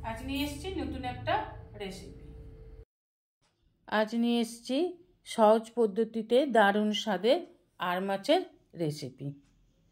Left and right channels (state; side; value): identical; both; correlation 1.00